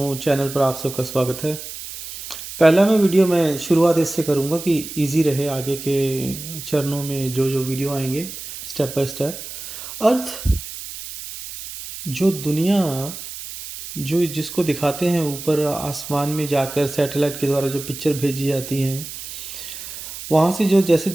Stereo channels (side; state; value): right; noise; hiss, 11 dB below the sound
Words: चैनल पर आप सबका स्वागत है। पहला मैं वीडियो मैं शुरुआत इससे करूँगा कि इजी रहे आगे के चरणों में जो जो वीडियो आएंगे स्टेप बाय स्टेप। अर्थ, जो दुनिया, जो जिसको दिखाते हैं ऊपर आसमान में जाकर सैटेलाइट के द्वारा जो पिक्चर भेजी जाती हैं, वहाँ से जो जैसे